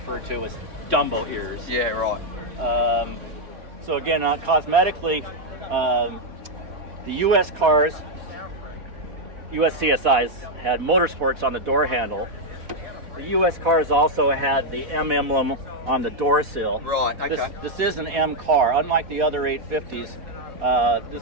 to as Dumbo ears. Yeah, right. So again, cosmetically, the U.S. cars, U.S. CSIs, had motorsports on the door handle. The U.S. cars also had the M emblem on the door sill. Right, okay. This is an M car. Unlike the other 850s,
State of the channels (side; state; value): left; late; 4.1 ms